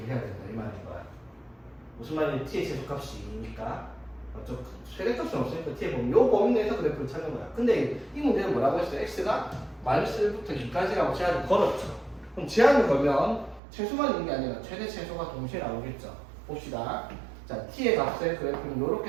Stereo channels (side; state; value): left; drops out; at 13.6 s